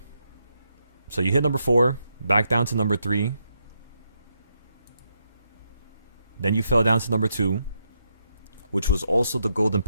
So you hit number 4, back down to number 3. Then you fell down to number 2, which was also the golden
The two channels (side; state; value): both; inverted; correlation -0.81